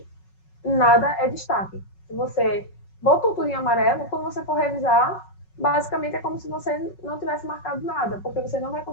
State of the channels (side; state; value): right; late; 5.4 ms